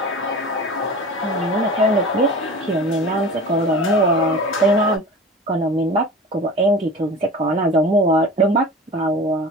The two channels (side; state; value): both; normal; correlation 0.36